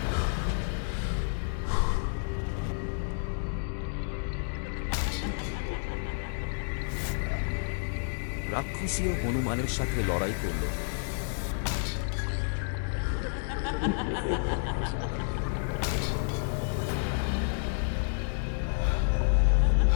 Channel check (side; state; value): right; silent; digital silence